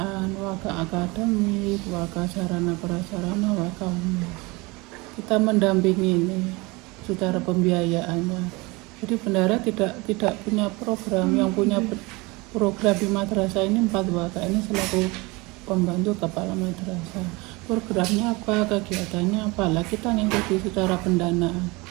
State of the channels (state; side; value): quieter; left; 24.8 dB